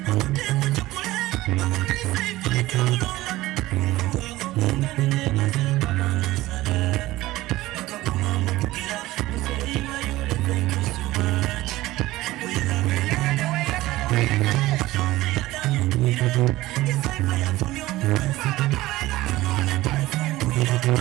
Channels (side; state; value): left; quieter; 17.5 dB